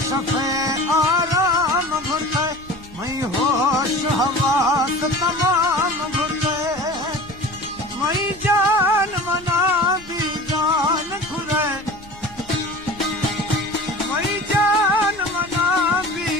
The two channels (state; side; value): normal; both; correlation 0.38